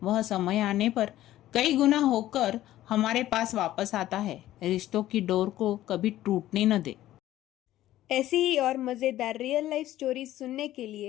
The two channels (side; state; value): right; quieter; 14.1 dB